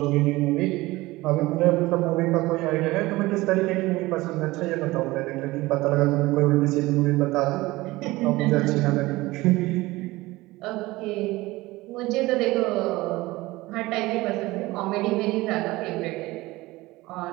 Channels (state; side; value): quieter; left; 19.7 dB